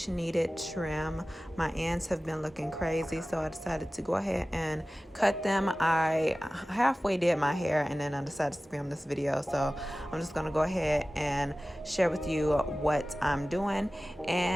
needed trim. My ends have been looking crazy, so I decided to go ahead and cut them. I halfway did my hair and then I decided to film this video, so I'm just going to go ahead and share with you what I'm doing.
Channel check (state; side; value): normal; both; correlation 0.97